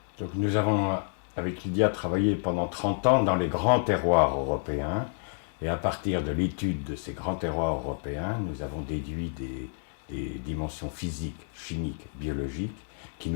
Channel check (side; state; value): right; silent; digital silence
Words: Donc nous avons, avec Lydia, travaillé pendant 30 ans dans les grands terroirs européens. Et à partir de l'étude de ces grands terroirs européens, nous avons déduit des dimensions physiques, chimiques, biologiques, qui